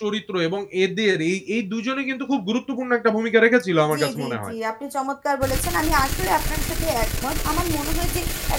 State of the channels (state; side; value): identical; both; correlation 1.00